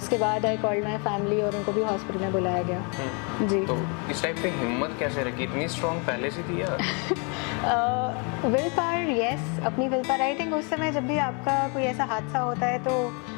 बाद आई कॉल्ड माई फैमिली और उनको भी हॉस्पिटल में बुलाया गया। जी। तो इस टाइप पे हिम्मत कैसे रखी? इतनी स्ट्रॉन्ग पहले से थी या? विल पावर, यस, अपनी विल पावर। आई थिंक उस समय जब भी आपका कोई ऐसा हादसा होता है तो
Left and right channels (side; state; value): right; quieter; 34.9 dB